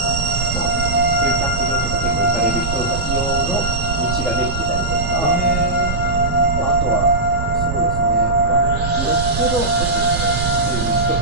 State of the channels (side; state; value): right; noise; rumble, 4 dB below the sound